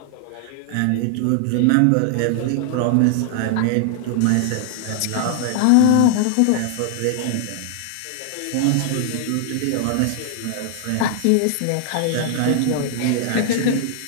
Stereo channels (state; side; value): different; both; correlation 0.00